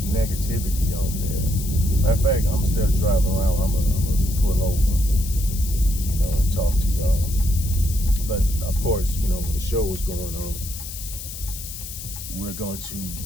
negativity on there. Matter of fact, instead of driving around, I'm gonna pull over, and talk to y'all. But of course, when the show is going on, we're going to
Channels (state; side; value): noise; left; hiss, 10 dB below the sound